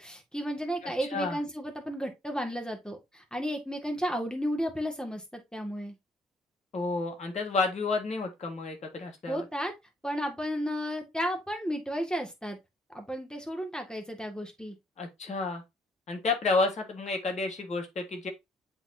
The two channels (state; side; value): normal; both; correlation 0.69